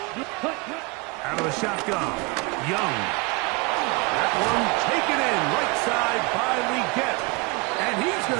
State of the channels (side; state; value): left; quieter; 28.6 dB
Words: Cut. Out of the shotgun, Young. That one taken in right side by Leggett. And he's going